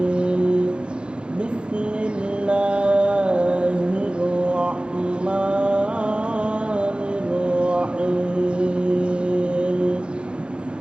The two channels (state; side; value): late; left; 0.054 ms